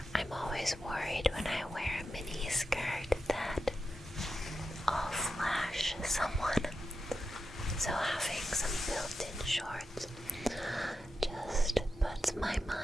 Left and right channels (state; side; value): normal; both; correlation 0.89